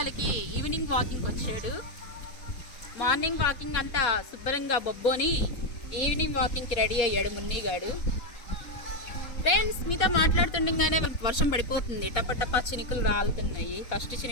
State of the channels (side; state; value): right; late; 4.2 ms